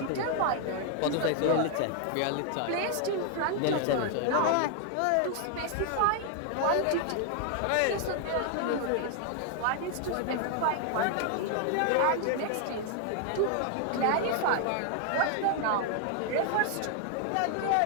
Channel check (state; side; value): different; both; correlation 0.00